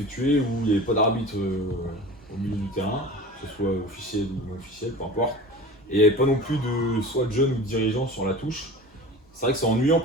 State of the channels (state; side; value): normal; both; correlation 0.36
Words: où il n'y avait pas d'arbitre au milieu du terrain, que ce soit officiel ou non officiel, peu importe. Et il n'y avait pas non plus soit de jeunes ou de dirigeants sur la touche. C'est vrai que c'est ennuyant